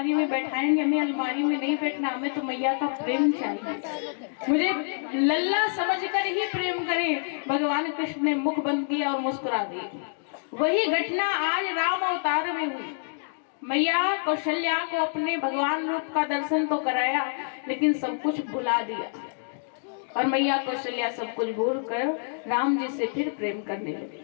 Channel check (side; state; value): right; silent; digital silence